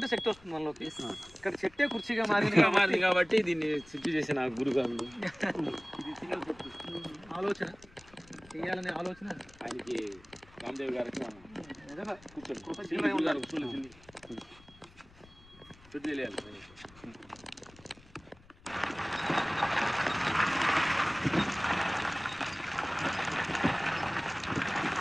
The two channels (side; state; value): left; noise; rumble, 24 dB below the sound